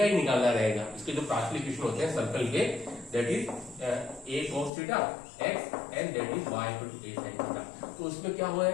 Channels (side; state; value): right; drops out; at 4.7 s